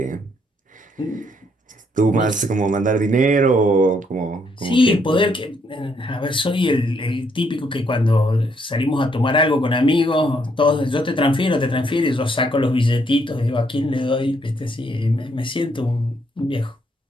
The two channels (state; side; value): normal; both; correlation 0.72